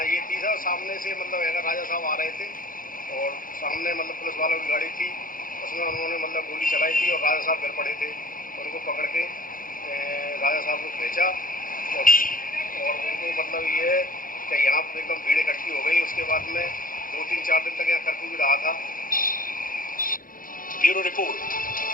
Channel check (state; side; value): late; right; 0.40 ms